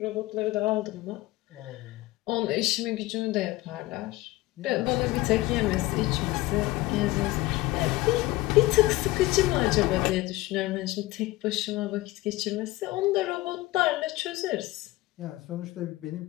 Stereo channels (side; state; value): right; quieter; 18.8 dB